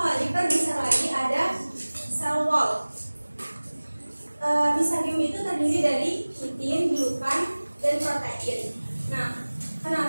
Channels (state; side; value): inverted; both; correlation -1.00